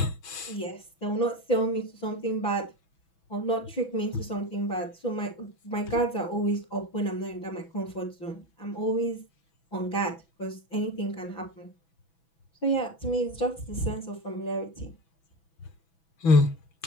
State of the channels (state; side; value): late; right; 6.1 ms